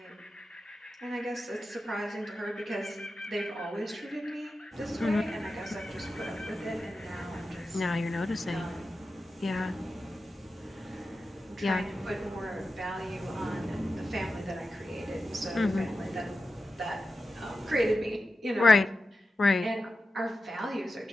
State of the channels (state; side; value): normal; both; correlation 0.92